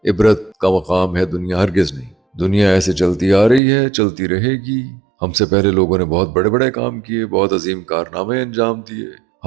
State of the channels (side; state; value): left; drops out; at 3.6 s